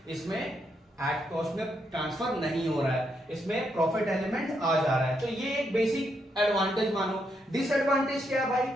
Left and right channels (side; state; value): both; normal; correlation 0.79